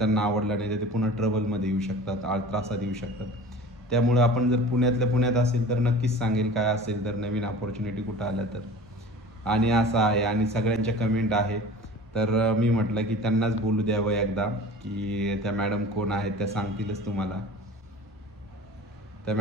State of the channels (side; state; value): both; normal; correlation 0.40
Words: आवडला नाही तर ते पुन्हा ट्रबलमध्ये येऊ शकतात, त्रासात येऊ शकतात. त्यामुळे आपण जर पुण्यातल्या पुण्यात असेल तर नक्कीच सांगेल काय असेल तर नवीन अपॉर्च्युनिटी कुठं आल्या तर. आणि असं आहे. आणि सगळ्यांच्या कमेंट आहे, तर मी म्हटलं की त्यांनाच बोलू द्यावं एकदा, की त्या मॅडम कोण आहेत त्या सांगतीलच तुम्हाला. त्या